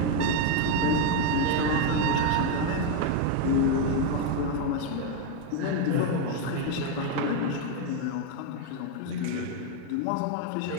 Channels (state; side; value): different; both; correlation 0.01